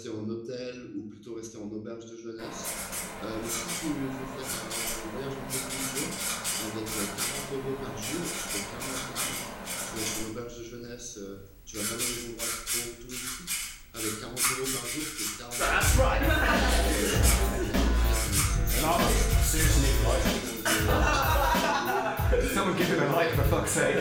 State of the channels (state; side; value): identical; both; correlation 1.00